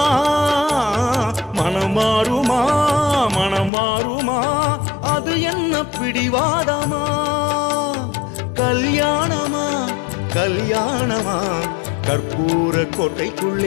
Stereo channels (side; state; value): right; drops out; at 3.7 s